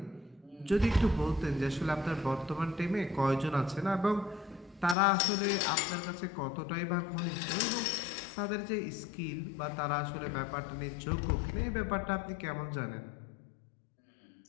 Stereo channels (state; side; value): drops out; right; at 5.0 s